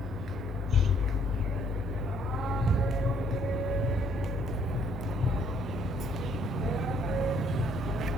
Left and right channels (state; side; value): normal; both; correlation 0.65